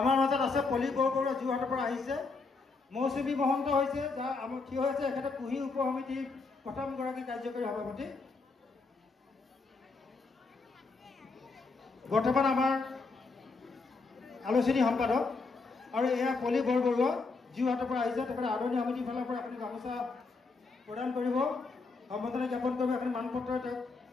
মাজত আছে পলি বৰবৰুৱা যোৰহাটৰ পৰা আহিছে। মৌচুমী মহন্ত হৈছে যাৰ আমাৰ থিয় হৈছে এখেতে কুহি উপ সমিতিৰ প্ৰথমগৰাকী কাৰ্যকৰী সভাপতি। বৰ্তমান আমাৰ আলোচনী সম্পাদক আৰু এয়া পলি বৰবৰুৱা যোৰহাটৰ পৰা আহিছে। তেখেতে আদৰণি সমিতিৰ ফালৰ পৰা এখন গামোচা প্ৰদান কৰিব, সম্বৰ্ধনা জ্ঞাপন কৰিব, এখন মানপত্ৰ তেওঁক।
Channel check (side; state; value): right; quieter; 4.1 dB